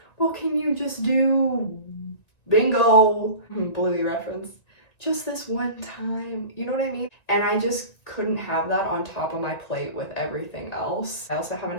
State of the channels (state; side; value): late; right; 2.0 ms